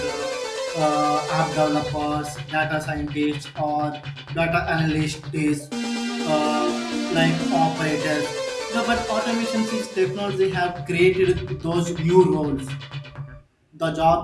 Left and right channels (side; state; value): both; identical; correlation 1.00